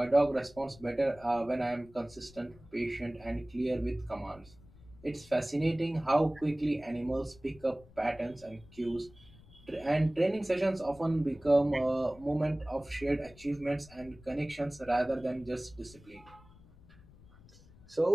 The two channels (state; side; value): noise; left; rumble, 23 dB below the sound